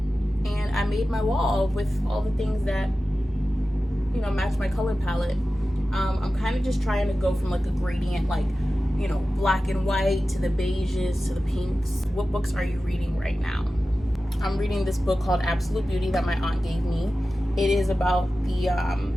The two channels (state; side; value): normal; both; correlation 0.94